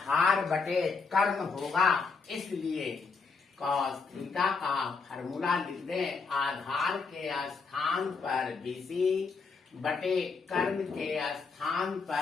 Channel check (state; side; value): quieter; right; 4.7 dB